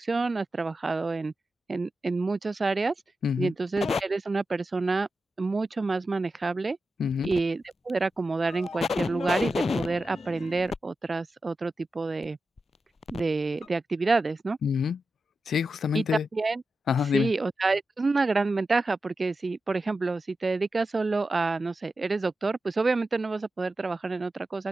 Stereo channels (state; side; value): normal; both; correlation 0.91